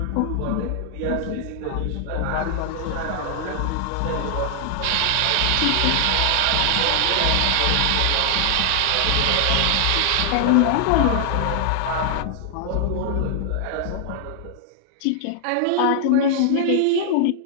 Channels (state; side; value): different; both; correlation -0.01